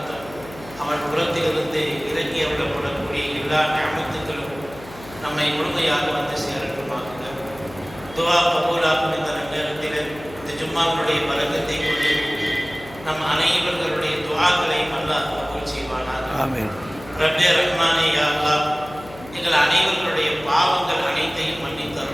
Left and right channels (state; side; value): noise; left; hum, 18 dB below the sound